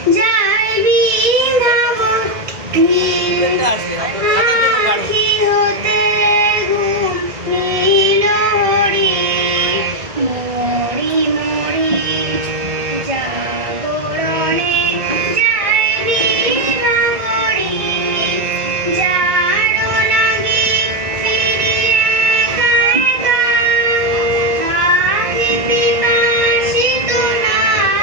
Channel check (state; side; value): late; left; 1.9 ms